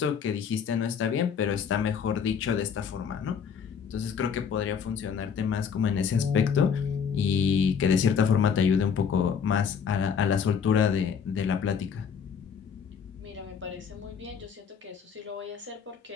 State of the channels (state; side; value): quieter; right; 6.9 dB